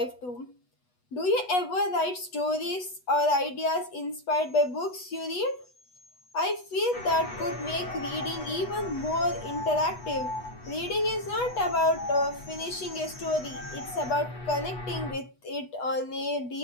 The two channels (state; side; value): late; right; 8.1 ms